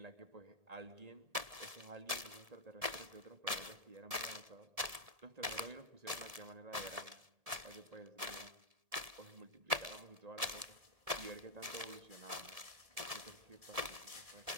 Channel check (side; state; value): left; late; 1.7 ms